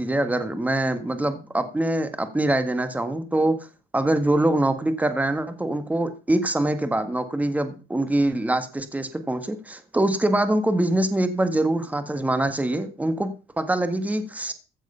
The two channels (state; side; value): normal; both; correlation 0.87